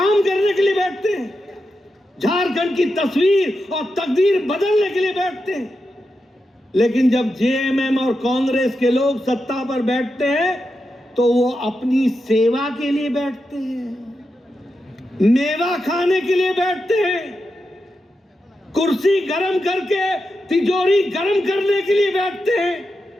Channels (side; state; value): both; normal; correlation 0.88